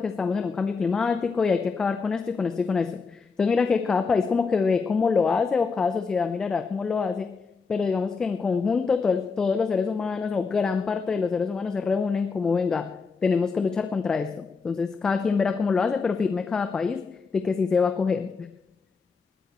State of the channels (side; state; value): right; quieter; 4.8 dB